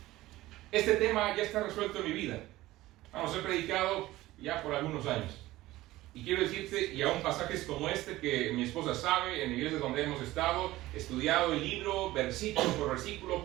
Este tema ya está resuelto en mi vida. Vamos, he predicado ya por algunos años. Y quiero decirte, y aún pasajes como este que mi esposa sabe, en iglesias donde hemos estado, estudiado el libro, versículo por versículo,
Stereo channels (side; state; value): left; quieter; 17.1 dB